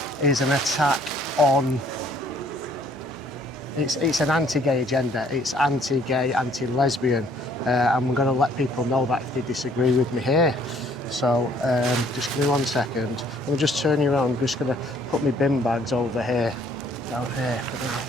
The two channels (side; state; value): both; normal; correlation 0.61